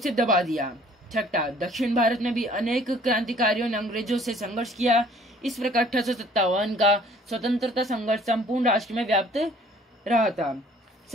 दबा दिया। छठा, दक्षिण भारत में भी अनेक क्रांतिकारियों ने अंग्रेजों से संघर्ष किया। इस प्रकार 1857 का स्वतंत्रता संघर्ष संपूर्ण राष्ट्र में व्याप्त रहा था।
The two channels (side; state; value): both; normal; correlation 0.56